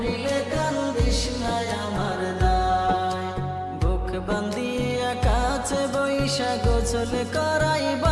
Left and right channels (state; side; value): identical; both; correlation 1.00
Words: কান্দিস না আমার দায় বুক বান্ধিয়া কাছে বৈশা গোসল